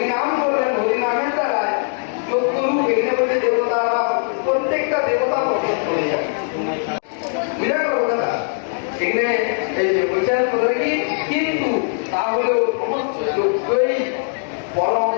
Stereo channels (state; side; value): silent; right; digital silence